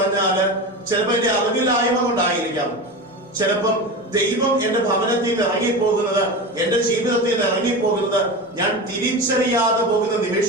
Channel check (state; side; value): normal; both; correlation 0.25